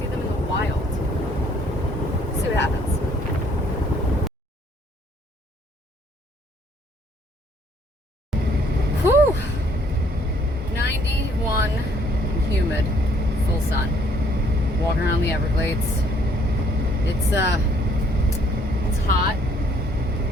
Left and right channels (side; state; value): both; normal; correlation 0.63